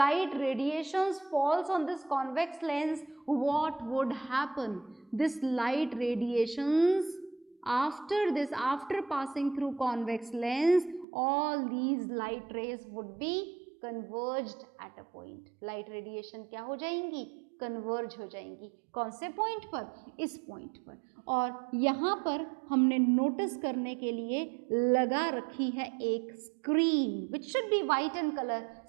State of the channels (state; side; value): drops out; left; at 11.1 s